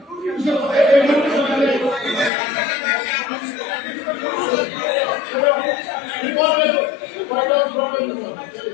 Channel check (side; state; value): right; drops out; at 2.3 s